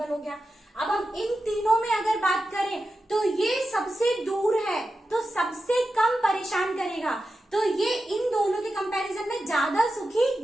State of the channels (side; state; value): both; normal; correlation 0.91